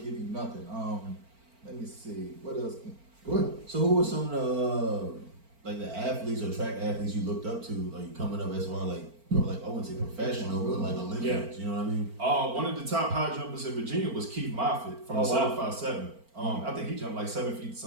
you nothing. Let me see. What else? Go ahead. So who were some of the athletes or track athletes you looked up to, like coming up as far like I wouldn't say professional, but like Olympians, you know what I mean? One of the top high jumpers in Virginia was Keith Moffitt from 757. I think he jumped like 7 feet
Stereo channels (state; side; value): late; left; 4.4 ms